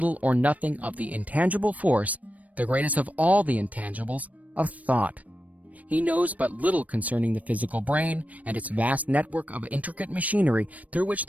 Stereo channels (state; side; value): late; left; 0.070 ms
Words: or nothing of the intangible force, the greatest of all the intangibles, of thought. He knows but little concerning the physical brain and its vast network of intricate machinery through which